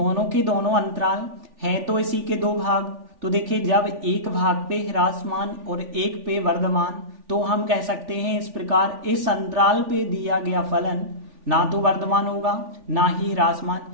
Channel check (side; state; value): left; late; 3.4 ms